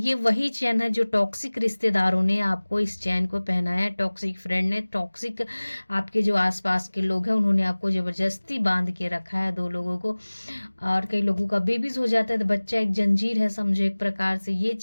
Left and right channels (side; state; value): both; inverted; correlation -1.00